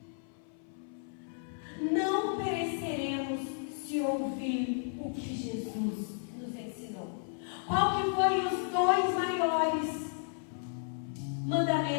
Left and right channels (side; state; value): right; silent; 56 dB below the other